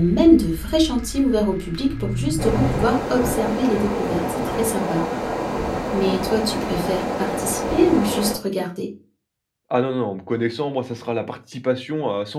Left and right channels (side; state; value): both; identical; correlation 1.00